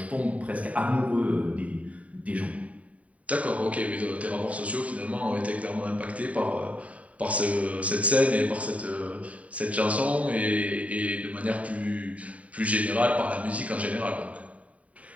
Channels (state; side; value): late; left; 0.067 ms